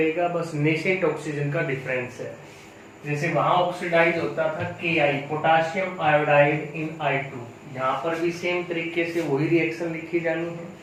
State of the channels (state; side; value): identical; both; correlation 1.00